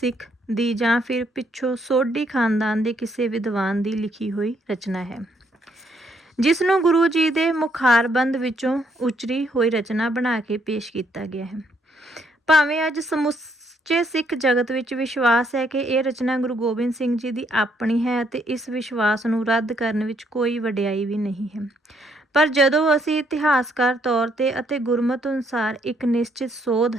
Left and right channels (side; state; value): both; normal; correlation 0.71